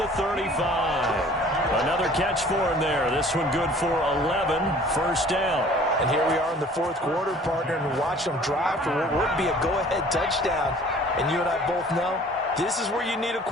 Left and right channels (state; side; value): normal; both; correlation 0.51